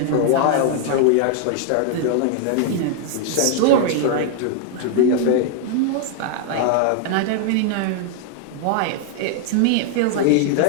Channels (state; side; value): different; both; correlation 0.00